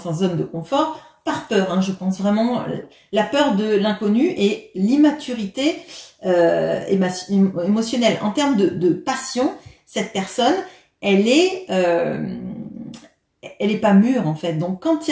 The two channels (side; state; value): both; identical; correlation 1.00